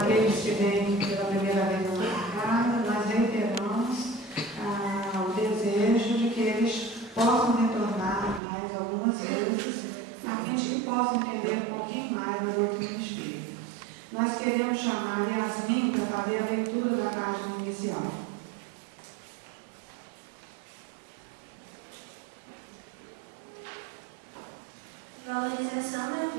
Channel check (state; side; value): drops out; left; at 8.4 s